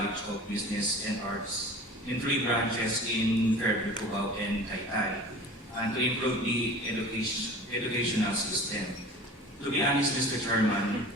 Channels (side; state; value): both; normal; correlation 0.40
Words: of Business and Arts in 3 branches in Fairview, Cubao, and Taytay, and to improve the educational system. To be honest, Mr. Chairman,